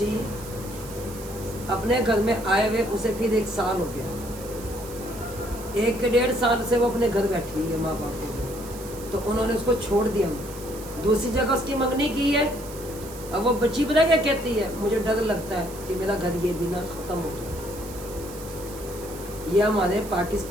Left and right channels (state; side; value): noise; right; hiss, 16 dB below the sound